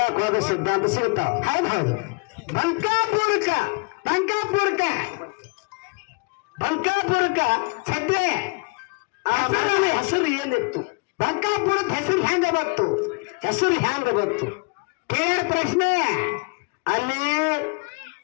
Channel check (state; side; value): quieter; right; 32.0 dB